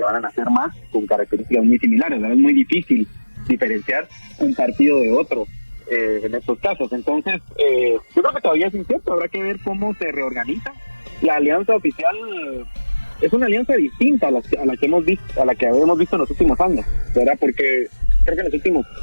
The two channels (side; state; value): both; inverted; correlation -1.00